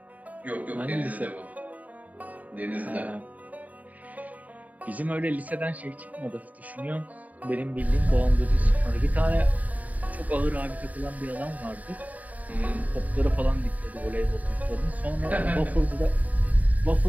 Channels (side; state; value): left; late; 0.073 ms